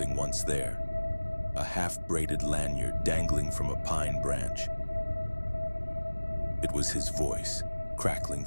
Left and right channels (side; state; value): both; inverted; correlation -1.00